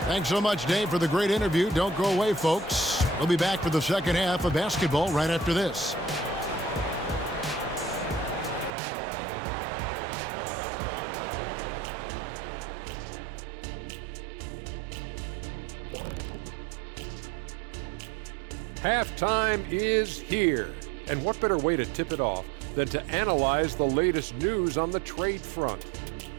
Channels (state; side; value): drops out; left; at 8.7 s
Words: Thanks so much, Dave, for the great interview. Don't go away, folks. We'll be back for the second half of basketball right after this. Halftime is here. And what better way to tip it off than to analyze the latest news on the trade front?